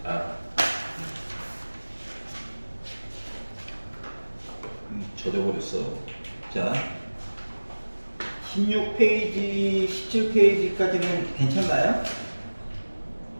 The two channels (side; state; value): both; inverted; correlation -1.00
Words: 젖어버렸어. 자, 16페이지, 17페이지까지는 괜찮나요?